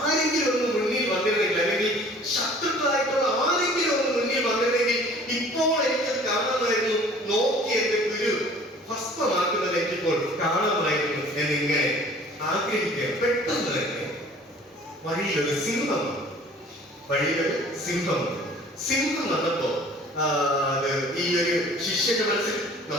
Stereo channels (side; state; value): both; normal; correlation 0.50